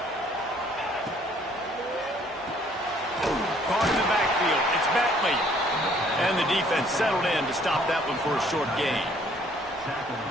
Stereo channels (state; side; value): normal; both; correlation 0.61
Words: Caught in the backfield. It's Bentley. And the defense settled in to stop that one for a short gain.